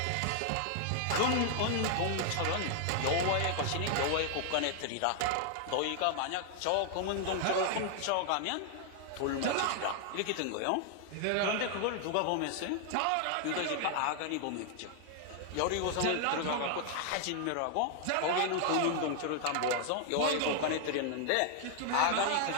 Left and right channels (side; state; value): both; different; correlation 0.00